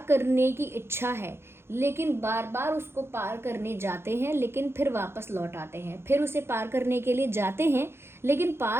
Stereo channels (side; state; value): left; late; 0.12 ms